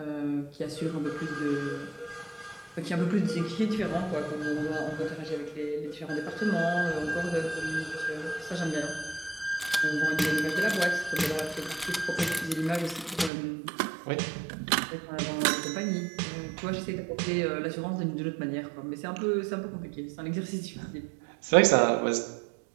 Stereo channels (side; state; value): left; drops out; at 13.3 s